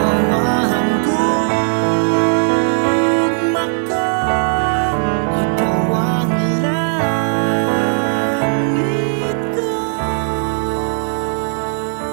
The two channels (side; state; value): left; silent; 63 dB below the other